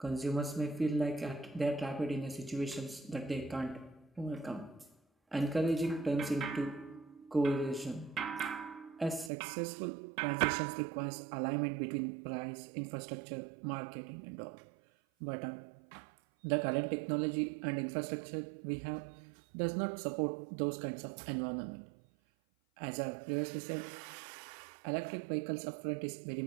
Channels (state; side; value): drops out; left; at 9.3 s